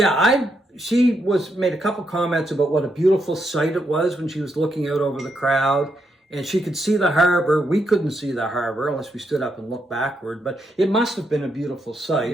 she made a couple comments about what a beautiful sight it was when she was looking out over the crowd, and she could see the harbor. We couldn't see the harbor unless we stood up and looked backward, but it must have been a beautiful sight.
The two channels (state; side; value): normal; both; correlation 0.80